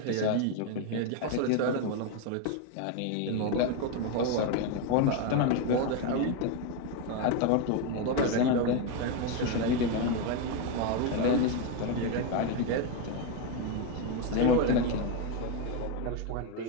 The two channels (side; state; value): both; different; correlation 0.02